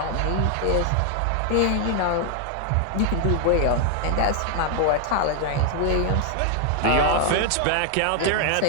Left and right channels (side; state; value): both; different; correlation 0.00